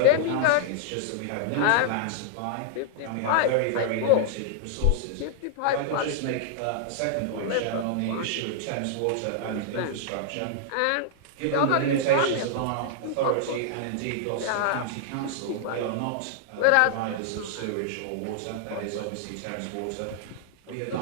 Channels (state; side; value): different; both; correlation -0.01